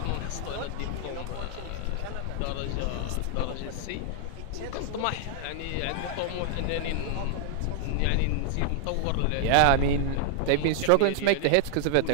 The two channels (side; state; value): both; different; correlation 0.00